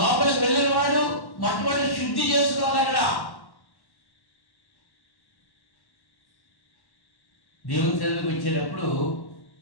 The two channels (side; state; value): right; late; 1.1 ms